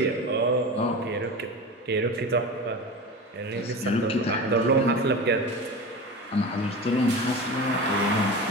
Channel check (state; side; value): normal; both; correlation 0.29